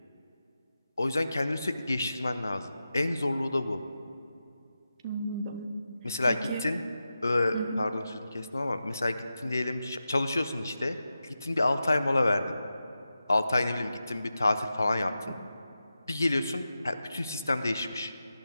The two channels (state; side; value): inverted; both; correlation -0.91